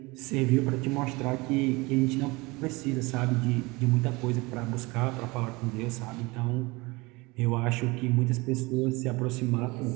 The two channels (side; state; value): left; quieter; 24.1 dB